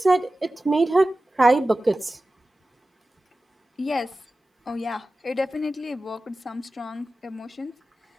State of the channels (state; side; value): normal; both; correlation 0.95